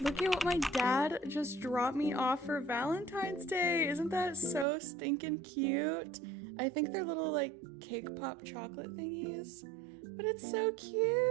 Look at what my dad just dropped me off for Valentine's Day. Isn't that so stinking cute? I think they're little like cake pop chocolate thingies, but it's so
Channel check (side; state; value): left; drops out; at 4.7 s